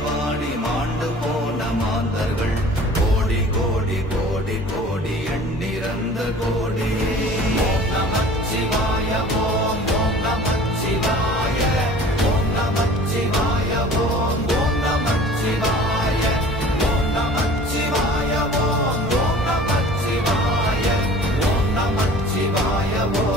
வாடி மாண்டு போன மாந்தர்கள் கோடி கோடி கோடி கோடி எண்ணிறந்த கோடி. ஓம் நமச்சிவாய ஓம் ஓம் நமச்சிவாய ஓம் நமச்சிவாய ஓம் ஓம் நமச்சிவாய ஓம் நமச்சிவாய ஓம் ஓம் நமச்சிவாய ஓம் நமச்சிவாய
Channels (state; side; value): normal; both; correlation 0.45